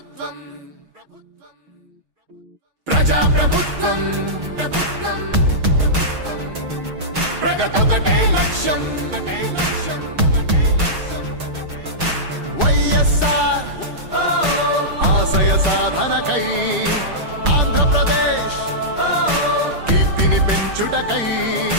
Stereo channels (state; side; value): late; left; 6.3 ms